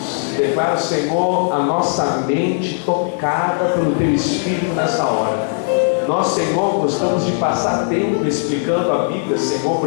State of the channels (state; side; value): silent; right; digital silence